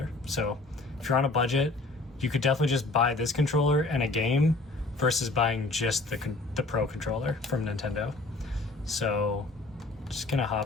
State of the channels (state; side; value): quieter; right; 3.2 dB